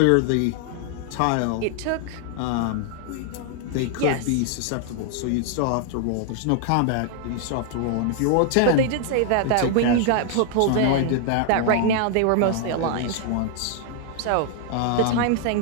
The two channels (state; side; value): different; both; correlation 0.00